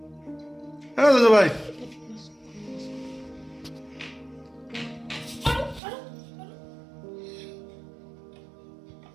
হ্যাঁ জজো ভাই,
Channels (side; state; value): left; drops out; at 5.8 s